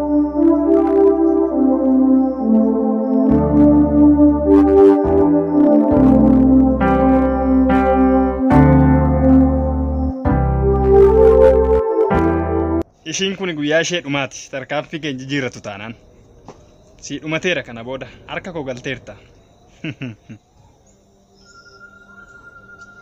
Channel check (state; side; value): identical; both; correlation 1.00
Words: Ishiin kun guyyaa ishee dhumaati. Tarkaanfii keenya jijjiirratu taanaan. Si dhumateera kana booda harka koo galteerta.